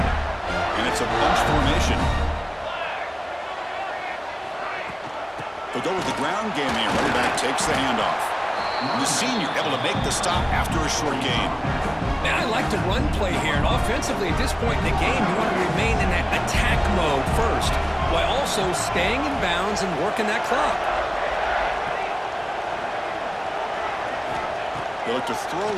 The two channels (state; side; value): identical; both; correlation 1.00